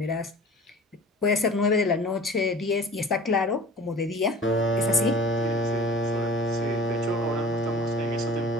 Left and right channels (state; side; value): normal; both; correlation 0.43